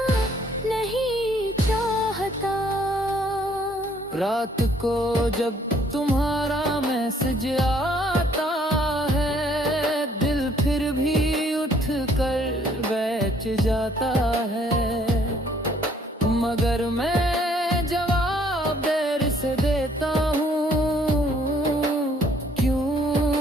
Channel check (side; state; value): both; normal; correlation 0.63